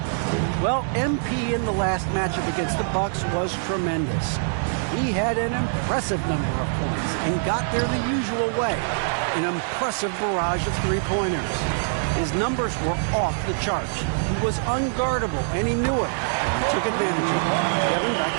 Well, MP in the last matchup against the Bucks was tremendous. He had an impressive number of points and got there the usual way. An impressive barrage of three-pointers. His numbers were off the charts. He was unguardable, and he knew it. He took advantage of it. Kevin,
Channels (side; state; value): left; silent; 63 dB below the other